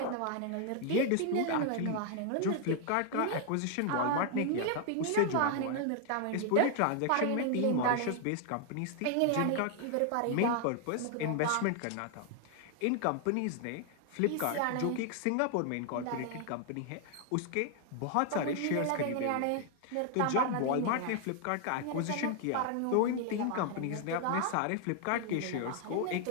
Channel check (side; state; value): both; different; correlation 0.00